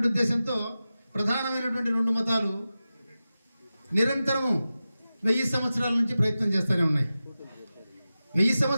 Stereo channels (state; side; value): inverted; both; correlation -0.94